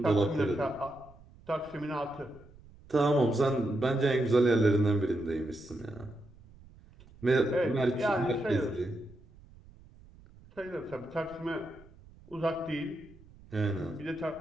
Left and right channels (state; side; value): noise; right; rumble, 23 dB below the sound